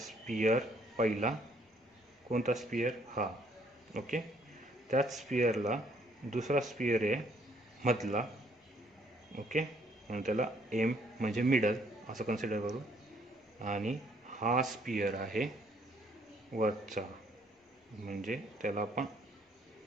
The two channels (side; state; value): both; normal; correlation 0.65